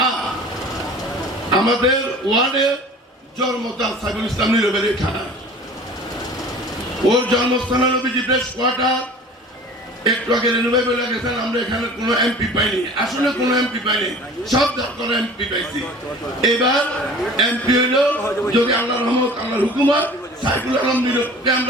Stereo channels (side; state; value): both; normal; correlation 0.43